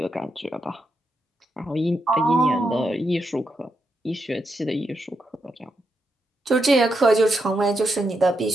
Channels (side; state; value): both; normal; correlation 0.83